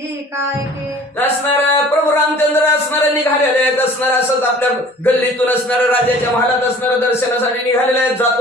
काय के. असणार प्रभू रामचंद्र असणारे निघालेले आहेत. असणार असंच आपल्या गल्लीतून असणाऱ्या राजाच्या महालात असणाऱ्या दर्शनासाठी निघालेले आहेत.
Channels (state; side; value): normal; both; correlation 0.48